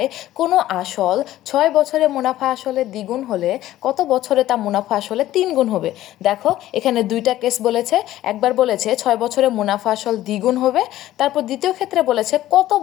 কোনো আসল 6 বছরে মুনাফা আসলে দ্বিগুণ হলে কত বছরে তা মুনাফা আসলে 3 গুণ হবে। দেখো এখানে দুইটা কেস বলেছে, একবার বলেছে 6 বছরে মুনাফা আসল দ্বিগুণ হবে, তারপর দ্বিতীয় ক্ষেত্রে বলেছে কত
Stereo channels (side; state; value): right; quieter; 14.3 dB